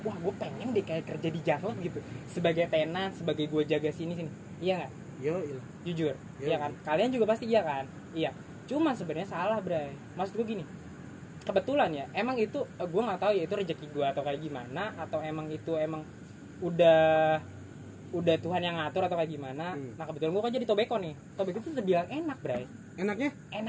pengen deh kayak kerja di Jaklot gitu. Sebagai tenan, sebagai gue jaga sini. Iya nggak? Iya. Jujur, iya kan? Kalian juga pasti iya kan? Iya. Cuman sebenarnya salah, Bray. Maksud gue gini. Kebetulan ya, emang itu gue nggak tahu ya itu rezeki gue atau kayak gimana, atau emang udah Tuhan yang ngatur atau kayak gimana. Nah kebetulan gue kan jadi Tobacco nih. Tobacco itu terbilang enak, Bray. Enaknya?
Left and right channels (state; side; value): identical; both; correlation 1.00